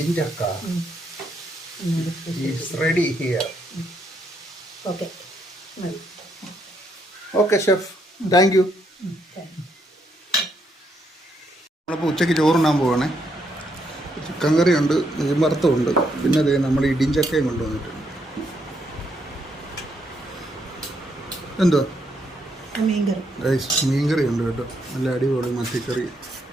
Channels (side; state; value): both; normal; correlation 0.75